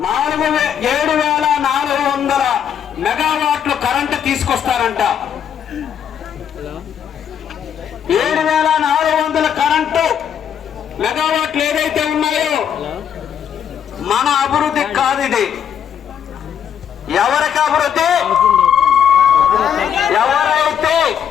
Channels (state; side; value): quieter; right; 8.6 dB